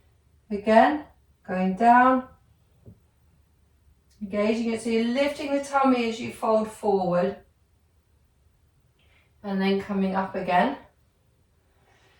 Again, going down, engaging it. So you're lifting the tummy as you fold forward, and then coming up again.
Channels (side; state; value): both; identical; correlation 1.00